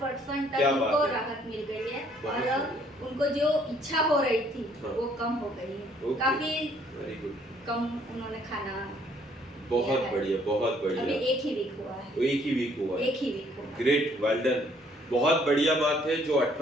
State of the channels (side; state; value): both; normal; correlation 0.63